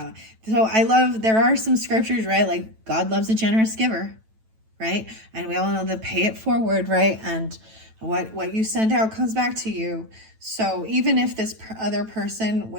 So I love, there are some scriptures, right? Like God loves a generous giver, right? And we all know the pay it forward, right? And what you send out comes back to you. So even if this other person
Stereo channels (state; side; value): late; left; 9.1 ms